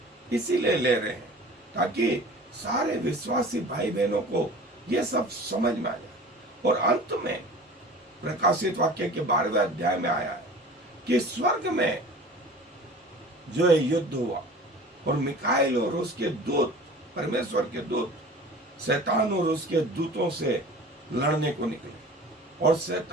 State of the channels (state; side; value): normal; both; correlation 0.41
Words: इसीलिए ले रहे हैं ताकि सारे विश्वासी भाई बहनों को ये सब समझ में आ जाए। और अंत में प्रकाशित वाक्य के 12वें अध्याय में आया है कि स्वर्ग में जो है युद्ध हुआ और मिकाएल और उसके दूत, परमेश्वर के दूत, शैतान और उसके दूतों से लड़ने को निकले, और